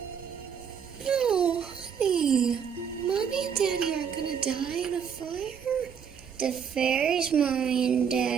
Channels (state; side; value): quieter; left; 7.4 dB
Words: No, honey. Mommy and Daddy aren't gonna die in a fire. The fairies' Mommy and